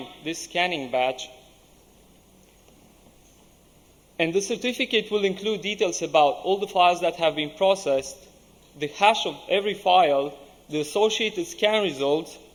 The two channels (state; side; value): identical; both; correlation 1.00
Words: this scanning batch. And the certificate will include details about all the files that have been processed, the hash of every file, the associated scan results,